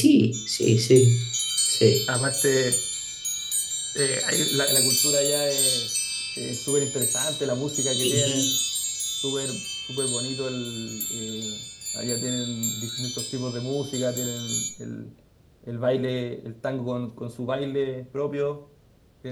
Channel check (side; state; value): both; identical; correlation 1.00